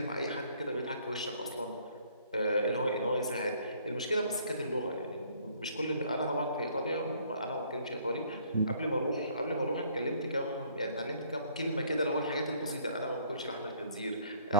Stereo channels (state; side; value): inverted; both; correlation -0.60